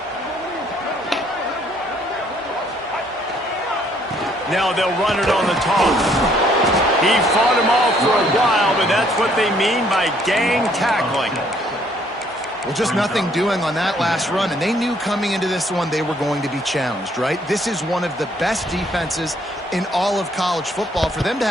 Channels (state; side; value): normal; both; correlation 0.65